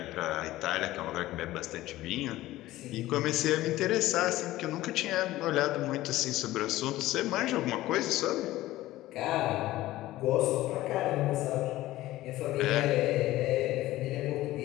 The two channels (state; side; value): quieter; right; 16.3 dB